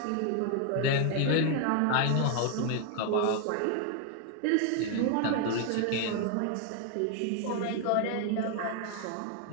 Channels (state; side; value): different; both; correlation 0.00